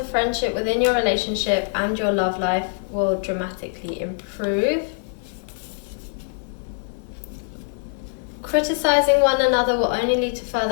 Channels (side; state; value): right; silent; 63 dB below the other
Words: friendship within your relationship, and your love life will dramatically improve. Criticizing one another will only lead to